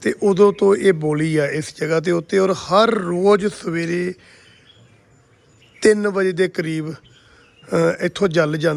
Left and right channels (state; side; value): identical; both; correlation 1.00